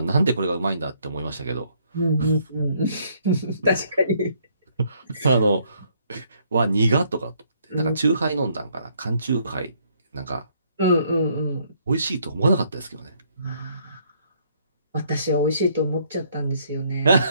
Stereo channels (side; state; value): both; inverted; correlation -0.67